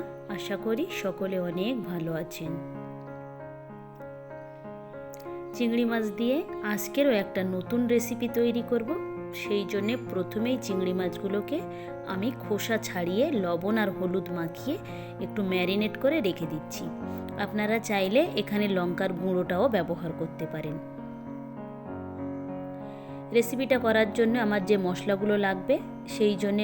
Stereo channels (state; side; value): identical; both; correlation 1.00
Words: আশা করি সকলে অনেক ভালো আছেন। চিংড়ি মাছ দিয়ে আজকেরও একটা নতুন রেসিপি তৈরি করব। সেই জন্যে প্রথমেই চিংড়ি মাছগুলোকে আমি খোসা ছাড়িয়ে লবণ আর হলুদ মাখিয়ে একটু ম্যারিনেট করে রেখে দিচ্ছি। আপনারা চাইলে এখানে লঙ্কার গুঁড়োটাও ব্যবহার করতে পারেন। রেসিপিটা করার জন্য আমার যে মশলাগুলো লাগবে সেই জন্যে